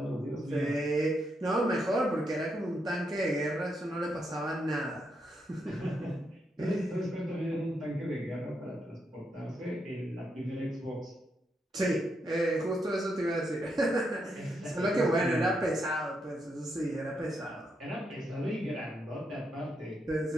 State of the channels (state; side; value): normal; both; correlation 0.80